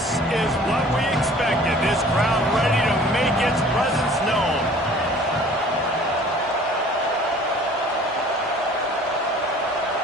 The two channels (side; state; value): both; normal; correlation 0.50